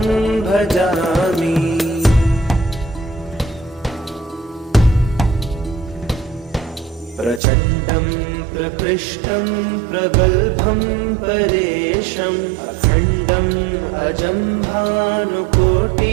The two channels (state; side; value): drops out; left; at 7.4 s